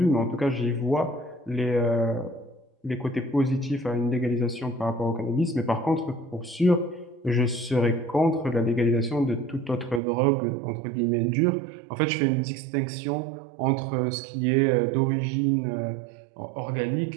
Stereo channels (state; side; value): drops out; left; at 10.0 s